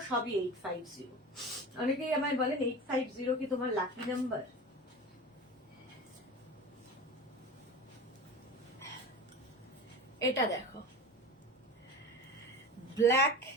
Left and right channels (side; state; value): both; normal; correlation 0.32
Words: সবই 850। অনেকেই আমায় বলেন 850 কি তোমার লাকি নাম্বার? এটা দেখো, ব্ল্যাক